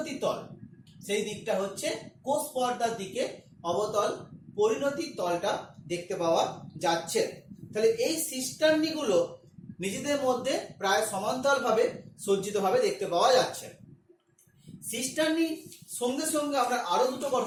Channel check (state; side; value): identical; both; correlation 1.00